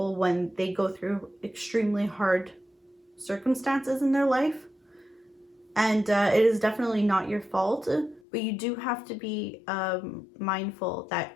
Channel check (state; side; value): drops out; right; at 8.2 s